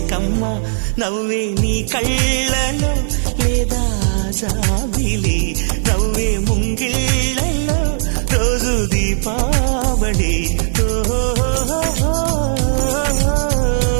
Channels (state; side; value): silent; left; digital silence